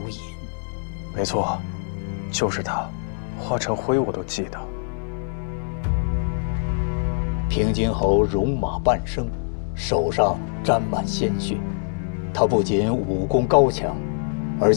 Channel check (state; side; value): silent; right; 62 dB below the other